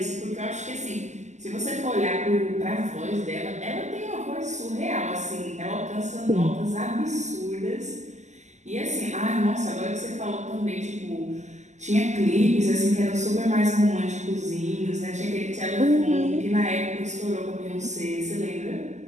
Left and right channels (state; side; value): late; left; 0.34 ms